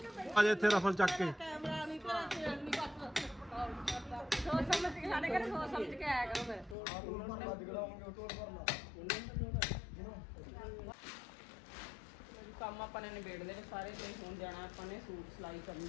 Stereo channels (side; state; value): right; drops out; at 6.8 s